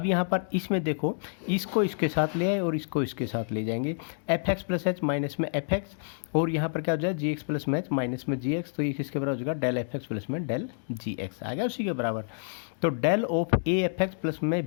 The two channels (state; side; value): silent; right; digital silence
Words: यहाँ पर इसमें देखो, इसको इसके साथ ले आए और इसको इसके साथ ले जाएंगे, f x plus h minus में एफ एक्स, और यहाँ पर क्या हो जाए जी एक्स प्लस में एच माइनस में जी एक्स, तो ये किसके बराबर हो जाएगा, डेल एफ एक्स प्लस में डेल जी एक्स आ गया उसी के बराबर। तो del of a f x plus में